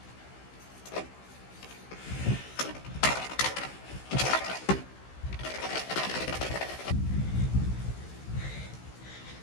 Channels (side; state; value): right; late; 16 ms